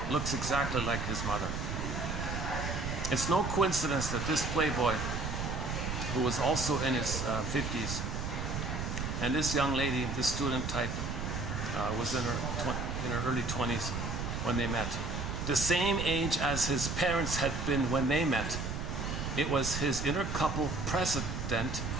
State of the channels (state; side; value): noise; right; rumble, 3 dB below the sound